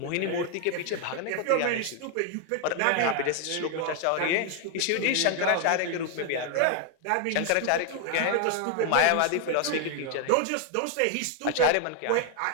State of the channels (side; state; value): both; different; correlation 0.00